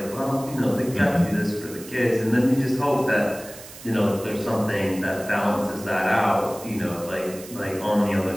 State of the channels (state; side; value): noise; right; hiss, 16 dB below the sound